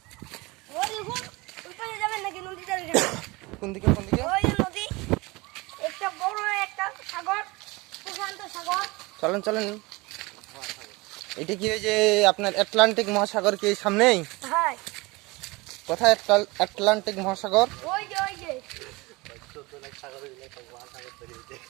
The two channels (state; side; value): quieter; left; 23.7 dB